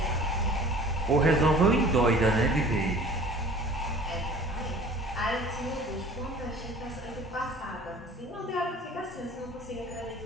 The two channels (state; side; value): normal; both; correlation 0.46